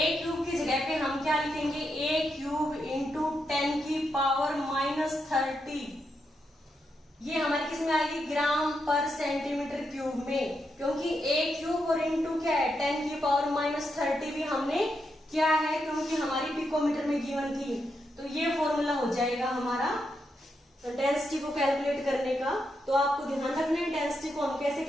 क्यूब की जगह पे हम क्या लिखेंगे ए क्यूब इंटू 10 की पावर -30। ये हमारे किस में आएगी ग्राम पर सेंटीमीटर क्यूब में, क्योंकि ए क्यूब और इंटू क्या है 10 की पावर -30 भी हमने क्या है क्योंकि हमारी पिकोमीटर में गिवन थी। तो ये फॉर्मूला हो जाएगा हमारा डेंसिटी को कैलकुलेट करने का। तो आपको ध्यान रखना है डेंसिटी को हम कैसे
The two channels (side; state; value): both; normal; correlation 0.83